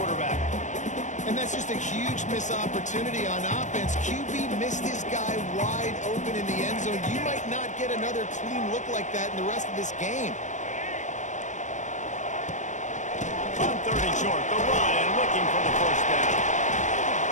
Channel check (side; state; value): right; late; 0.35 ms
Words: And that's just a huge missed opportunity on offense. QB missed his guy wide open in the end zone. You might not get another clean look like that in the rest of this game. On 3rd and short, the run and looking for the first down.